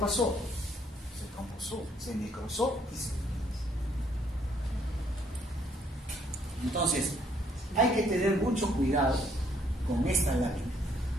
Se trombosó, se necrosó y se... Entonces, hay que tener mucho cuidado con esta lámina.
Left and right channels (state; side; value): normal; both; correlation 0.67